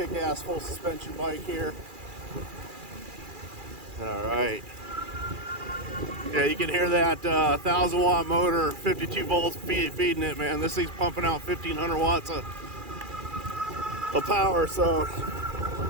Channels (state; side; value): late; left; 2.4 ms